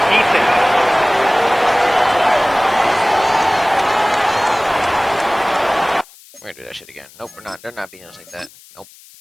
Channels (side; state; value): left; noise; hiss, 24 dB below the sound